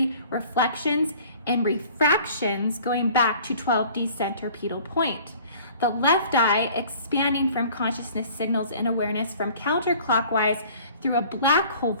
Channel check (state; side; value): inverted; both; correlation -0.49